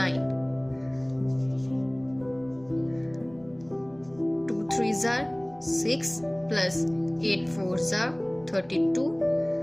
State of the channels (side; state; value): right; noise; rumble, 28 dB below the sound